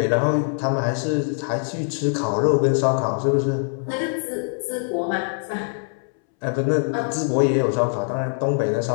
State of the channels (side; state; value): right; silent; 64 dB below the other